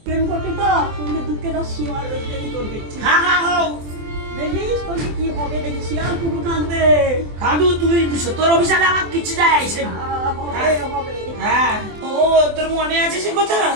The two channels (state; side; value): late; left; 24 ms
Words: প্রেম করতে তো তুমি দুঃখের সীমার দেরি করবে। হ্যাঁ হ্যাঁ হোক, দেখিস তোকে কি হবে, দেখি শিয়াল কুকুর কাঁদবে। কাঁদু, তুই তোর অভিশাপে আমার কিছু যায় আসে না। হবে হবে। হ্যাঁ, ও তোর মনে আছে সে কথা?